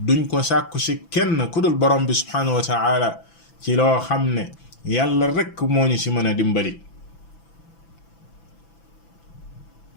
duñ ko sàkku ci kenn ku dul borom bi subhanahu wa ta'ala ci loo xam ne yàlla rek moo ñu ci mën a dimbali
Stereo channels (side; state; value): right; late; 6.0 ms